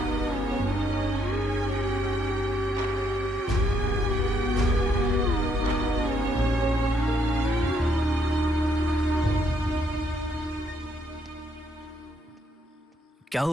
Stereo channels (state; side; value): normal; both; correlation 0.74